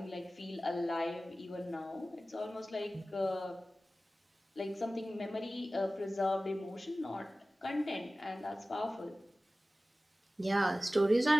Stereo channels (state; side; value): normal; both; correlation 0.96